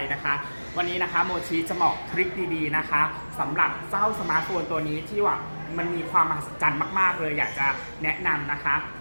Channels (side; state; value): both; inverted; correlation -1.00